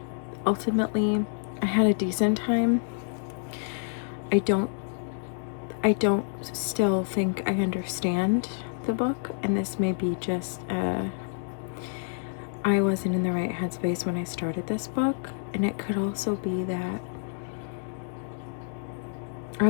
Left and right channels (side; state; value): right; silent; 59 dB below the other